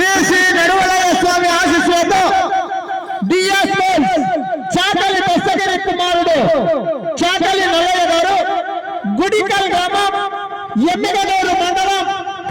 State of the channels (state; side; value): identical; both; correlation 1.00